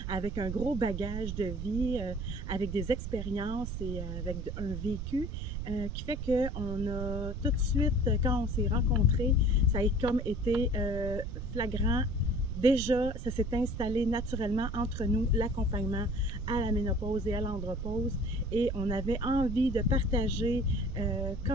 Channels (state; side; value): noise; right; rumble, 5 dB below the sound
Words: avec un gros bagage de vie, avec des expériences et avec un vécu qui fait qu'on a tout de suite, quand on s'est rencontrés, ça a comme été flagrant. Déjà, ça s'est installé naturellement entre nous, l'accompagnement à la ménopause et à l'andropause. Et on avait envie de partager